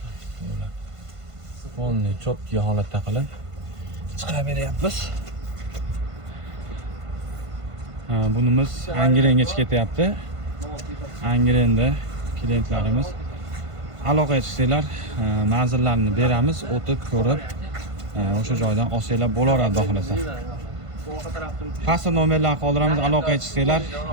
Qo'lni cho'tki holatda qilib chiqarib beryapmiz. Bunimiz Angrengacha ketyapti. Angrenda klientlarimiz aloqaga chiqsanglar, manzillarni beramiz, o'tib ko'rib, o'sha joydan olsanglar bo'laveradi xudo xolasa. Pastda nomerlarni qoldiramiz, aloqaga chiqsanglar,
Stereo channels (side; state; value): left; late; 1.5 ms